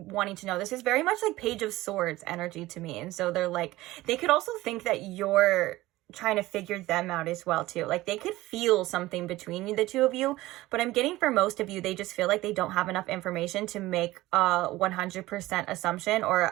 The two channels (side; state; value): left; quieter; 17.8 dB